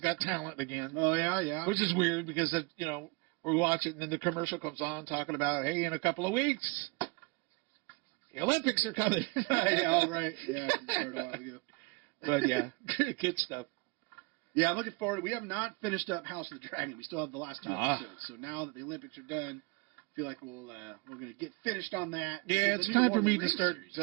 Talent again, Oh yeah. which is weird because we watch it and then the commercial comes on talking about, hey, in a couple of weeks the Olympics are coming. yeah, all right. Yeah, it started a while ago. But yeah, good stuff. Yeah, I'm looking forward. We have not finished up House of the Dragon. We still have the last 2 Ah. episodes. So now that the Olympics are done, I feel like we're going to get finished on that. Yeah, Because it's the new time for Lord of me the to Rings start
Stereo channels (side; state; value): left; quieter; 27.0 dB